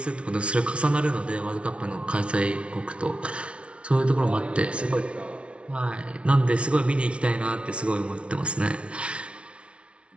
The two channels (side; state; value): left; late; 0.060 ms